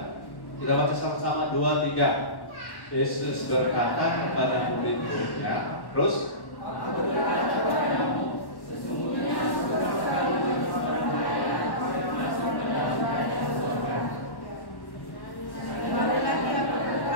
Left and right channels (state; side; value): late; right; 1.1 ms